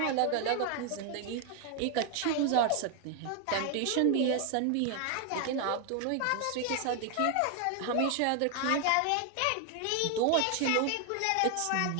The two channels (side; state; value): both; different; correlation 0.00